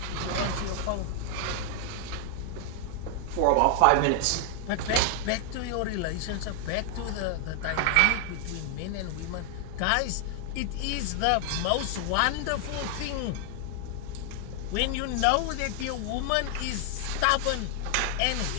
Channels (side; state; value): both; different; correlation 0.00